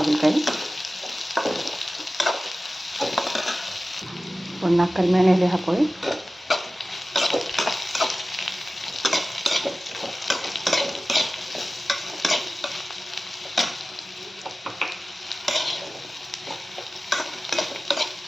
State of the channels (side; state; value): both; normal; correlation 0.96